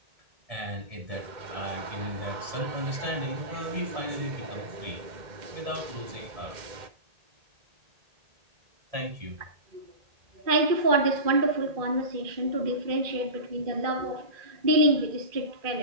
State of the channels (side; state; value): left; late; 1.8 ms